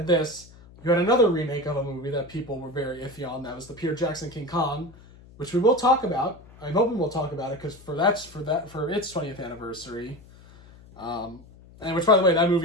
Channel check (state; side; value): noise; left; hum, 22 dB below the sound